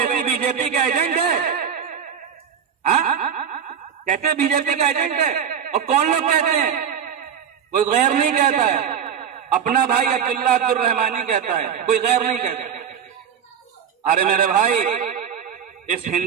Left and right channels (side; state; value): left; quieter; 7.9 dB